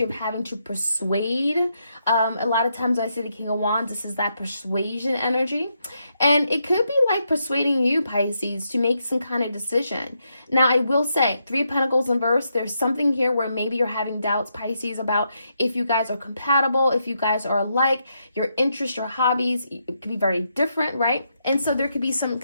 of having to persuade. A lot of times when I say the King of Wands, this is that persuasion energy. And it could be like persuading you, Pisces, to make some kind of decision. Now, I will say, 3 of Pentacles in reverse, there's something here where maybe you're having doubts, Pisces, about if you guys are compatible, if you guys are alike, your interests, your hobbies, it could be very different, right? And so there could be some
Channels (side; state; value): both; inverted; correlation -0.81